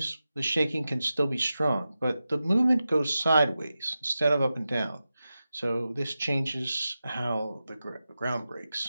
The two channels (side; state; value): both; inverted; correlation -0.93